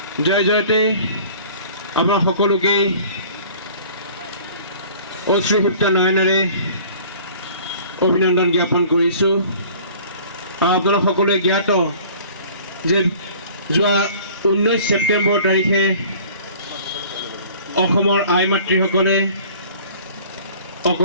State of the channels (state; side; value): inverted; both; correlation -0.48